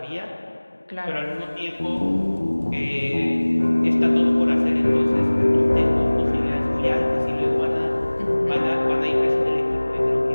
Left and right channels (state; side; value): inverted; both; correlation -1.00